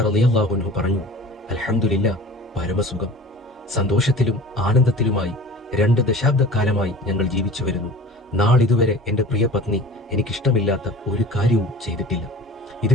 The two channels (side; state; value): both; normal; correlation 0.40